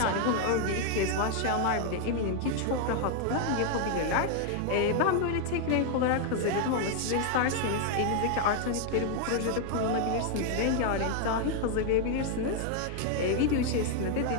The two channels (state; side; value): different; both; correlation 0.00